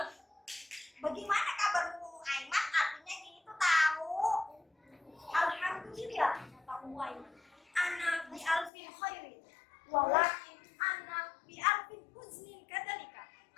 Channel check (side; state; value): right; drops out; at 8.7 s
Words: Bagaimana kabar Ummu Aiman? Artinya gitu tahu. Alhamdulillah, kata Ummu Aiman. Ana bi alfin khairin, walakin ana bi alfin huznin kadzalika